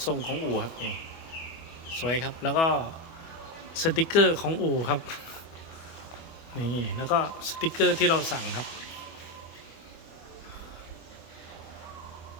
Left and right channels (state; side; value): late; right; 25 ms